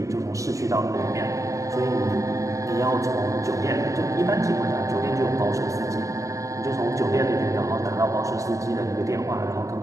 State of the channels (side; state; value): left; late; 0.16 ms